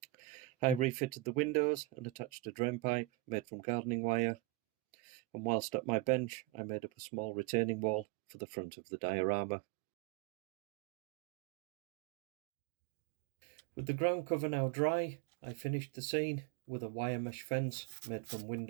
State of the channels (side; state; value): left; drops out; at 8.1 s